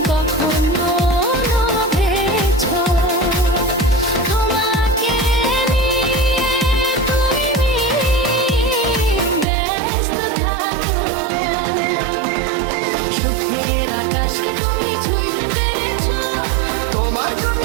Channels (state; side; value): drops out; left; at 9.5 s